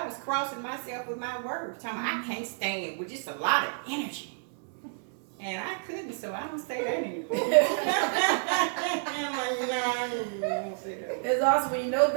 was crossing myself with my words, telling me I can't stand with just a lot of energy. And I couldn't, so I don't say that anymore. I'm like, no, I won't say that. It's awesome when you know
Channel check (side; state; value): left; silent; digital silence